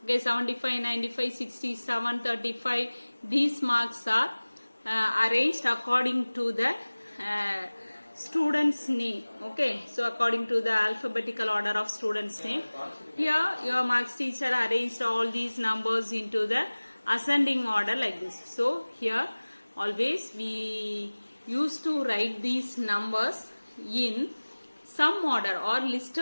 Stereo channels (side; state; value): both; inverted; correlation -1.00